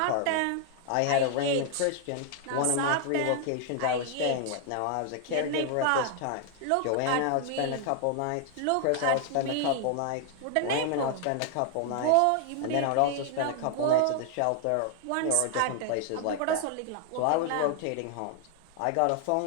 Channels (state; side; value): different; both; correlation 0.00